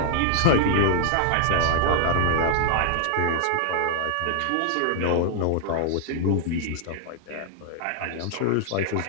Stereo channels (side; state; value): both; different; correlation -0.01